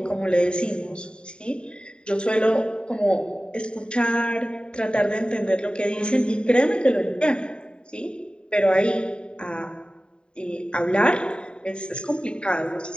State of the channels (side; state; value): right; late; 0.050 ms